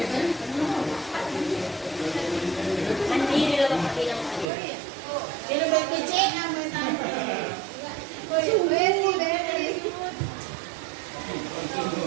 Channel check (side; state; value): left; drops out; at 4.5 s